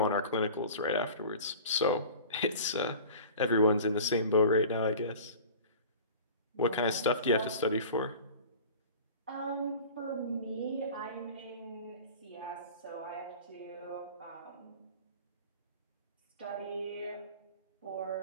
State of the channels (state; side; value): inverted; both; correlation -0.40